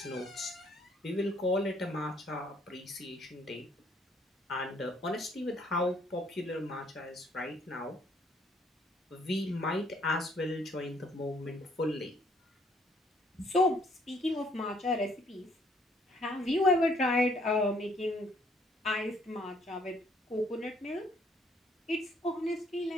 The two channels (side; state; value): both; normal; correlation 0.65